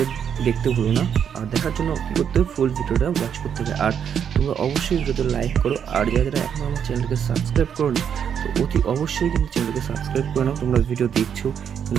দেখতে ভুলো না, আর দেখার জন্য কী করতে হবে, ফুল ভিডিওটা ওয়াচ করতে হবে। আর তোমরা অবশ্যই ভিডিওতে লাইক করো, আর যারা এখন আমার চ্যানেলকে সাবস্ক্রাইব করো নি তো অতি অবশ্যই কিন্তু চ্যানেলকে সাবস্ক্রাইব করে নাও। তোমরা ভিডিও দেখছো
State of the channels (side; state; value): left; quieter; 8.1 dB